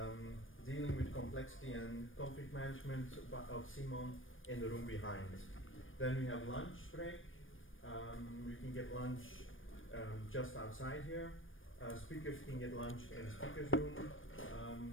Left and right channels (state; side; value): late; right; 0.58 ms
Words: dealing with complexity and conflict management of Simon in the room behind. Then we have lunch break. You can get lunch just outside here. Speakers can get lunch in the speakers room.